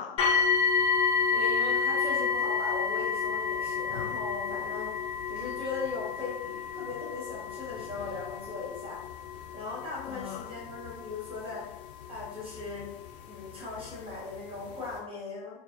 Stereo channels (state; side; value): quieter; right; 5.1 dB